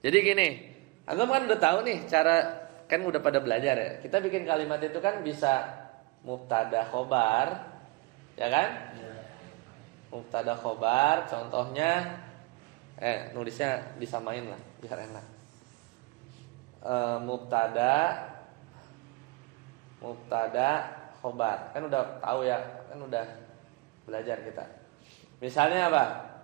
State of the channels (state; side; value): quieter; left; 23.9 dB